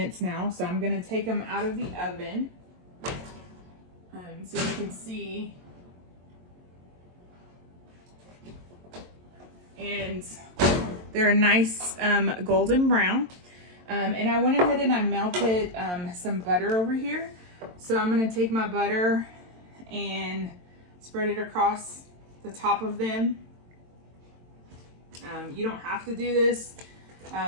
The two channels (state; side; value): late; left; 22 ms